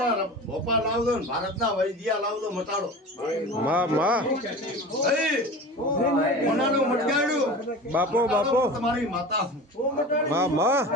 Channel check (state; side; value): normal; both; correlation 0.34